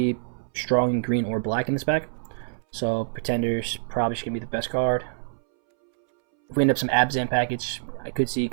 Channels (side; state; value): left; silent; 61 dB below the other